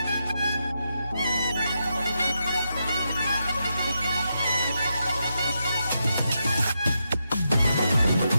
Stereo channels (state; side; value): inverted; both; correlation -0.85